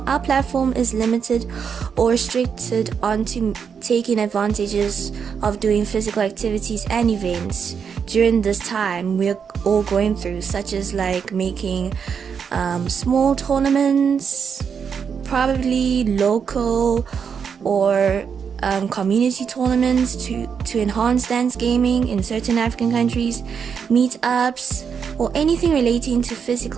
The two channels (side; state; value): left; quieter; 6.8 dB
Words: our platform is limited or restricted onto taking advantages of doing physical activities and events during this time we're all going through, such as like making small tournaments, probably local or community tournaments to enhance dance gaming in certain African countries, meetups, or anything relating to